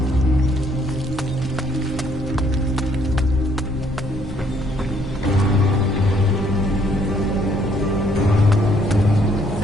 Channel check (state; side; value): normal; both; correlation 0.66